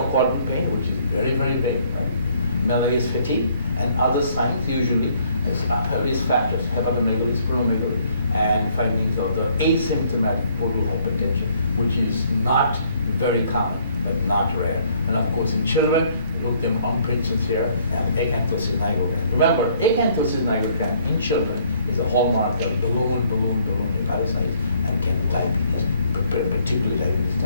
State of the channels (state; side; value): inverted; both; correlation -0.65